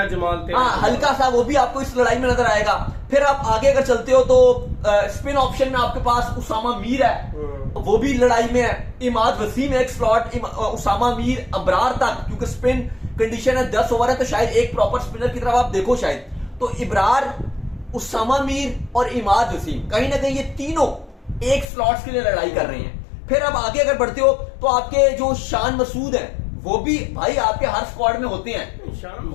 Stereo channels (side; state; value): right; drops out; at 21.7 s